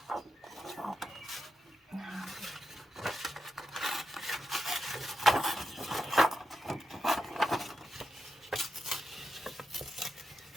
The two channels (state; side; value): normal; both; correlation 0.87